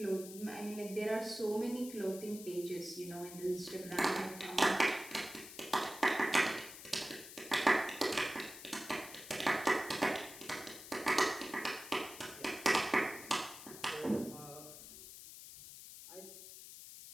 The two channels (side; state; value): left; noise; hiss, 13 dB below the sound